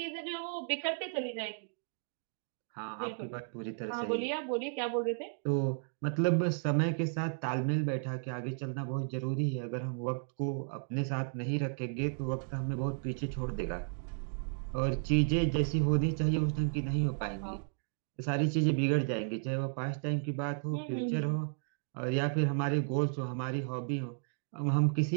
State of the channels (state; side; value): silent; left; digital silence